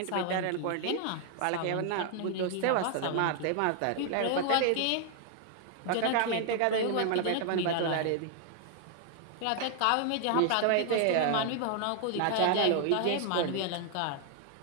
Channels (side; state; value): both; different; correlation 0.00